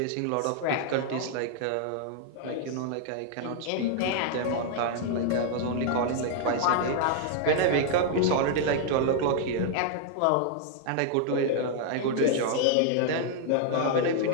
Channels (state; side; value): different; both; correlation 0.00